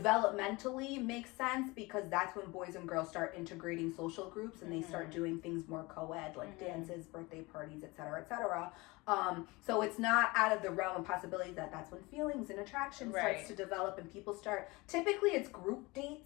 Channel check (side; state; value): right; quieter; 23.7 dB